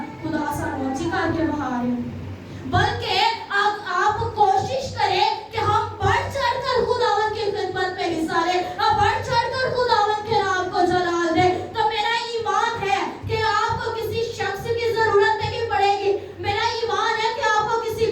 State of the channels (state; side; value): identical; both; correlation 1.00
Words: خدا سانو اچھی کر کے بہا رہے ہیں. بلکہ آپ کوشش کریں کہ ہم بڑھ چڑھ کر خداوند کی خدمت میں حصہ لیں, بڑھ چڑھ کر خداوند کے نام کو جلال دیں. تو میرا ایمان ہے کہ آپ کو کسی شخص کی ضرورت نہیں پڑے گی. میرا ایمان ہے کہ آپ کو کسی